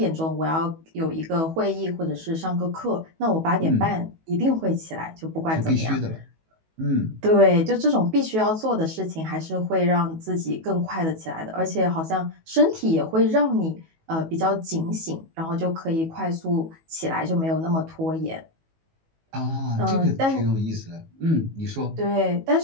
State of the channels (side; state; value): left; late; 19 ms